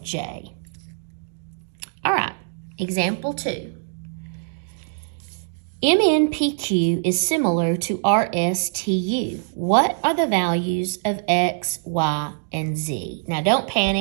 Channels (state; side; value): silent; left; digital silence